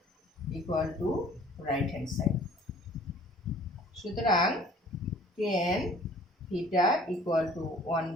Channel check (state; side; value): normal; both; correlation 0.52